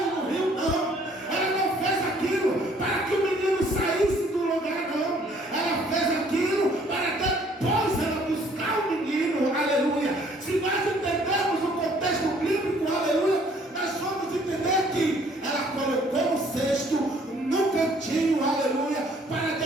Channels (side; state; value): both; normal; correlation 0.60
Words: no rio, não. Ela não fez aquilo para que o menino saísse do lugar, não. Ela fez aquilo para depois ela buscar o menino, aleluia. Se nós entendermos o contexto bíblico, aleluia, nós vamos entender que ela colocou o cesto no cantinho, aleluia, para